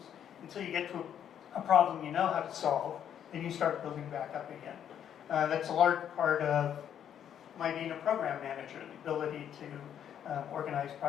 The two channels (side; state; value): right; quieter; 9.4 dB